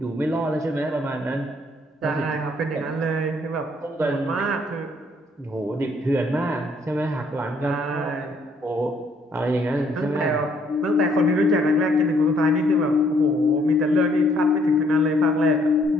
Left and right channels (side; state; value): both; normal; correlation 0.66